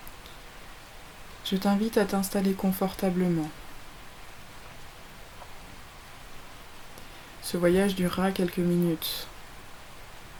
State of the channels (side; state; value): both; identical; correlation 1.00